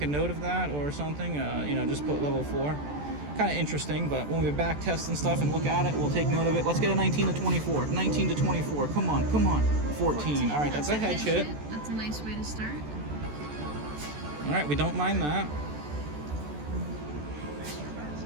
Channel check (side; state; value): left; late; 14 ms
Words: note of that or something? Just put level 4. Kind of interesting, but when we back test and stuff and look at it, we'll take note of it. Let's get a 19 to 24. 19 to 24. Come on. 14. All right, that's a hedge hit. That's a nice way to start. All right, we don't mind that.